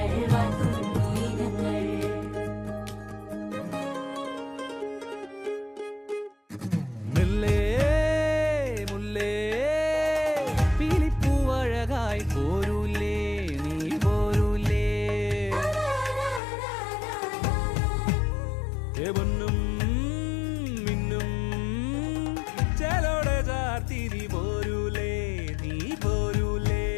വാഴ്ത്തുന്നു ഇനങ്ങൾ മുല്ലേ മുല്ലേ പീലിപ്പൂവഴകായി പോരൂലേ നീ പോരൂലേ പൊന്നും മിന്നും ചേലോടെ ചാർത്തിരി പോരൂലേ നീ പോരൂലേ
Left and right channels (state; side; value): drops out; right; at 16.4 s